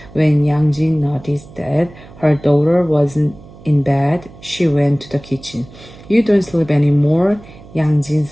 When Yang Jin noticed that her daughter wasn't in bed, she went to the kitchen. You don't sleep anymore? Yang Jin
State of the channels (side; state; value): right; noise; hum, 21 dB below the sound